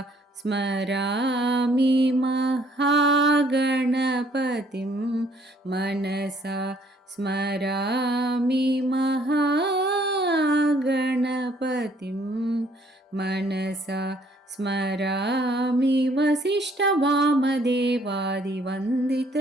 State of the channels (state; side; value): normal; both; correlation 0.63